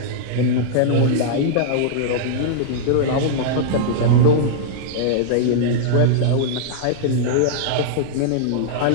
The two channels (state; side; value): different; both; correlation -0.02